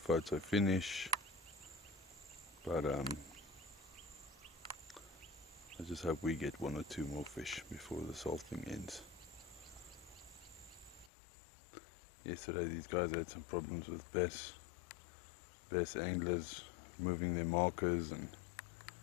finish, but I just hope we get 1 or 2 more fish before this whole thing ends. Yesterday these guys had some problems with bass anglers moving their markers and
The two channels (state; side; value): drops out; right; at 11.1 s